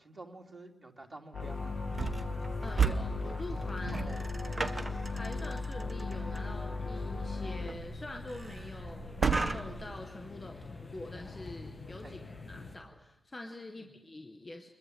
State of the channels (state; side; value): normal; both; correlation 0.84